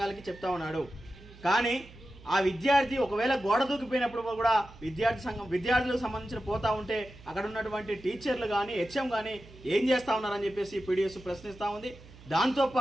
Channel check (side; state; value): right; noise; hum, 20 dB below the sound